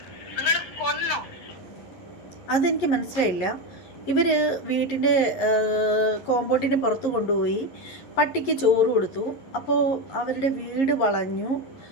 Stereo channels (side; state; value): right; late; 11 ms